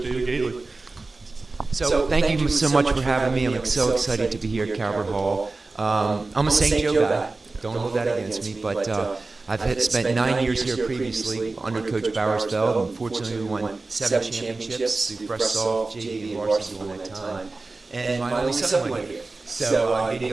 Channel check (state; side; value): quieter; left; 3.5 dB